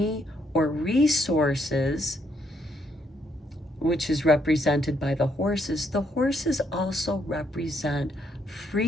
or resources, which is represented by the horses also represent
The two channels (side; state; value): both; normal; correlation 0.73